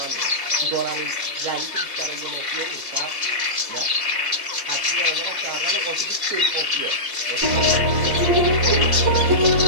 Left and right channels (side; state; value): left; late; 2.8 ms